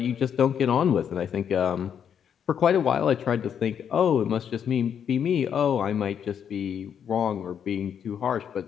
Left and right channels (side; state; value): right; quieter; 8.2 dB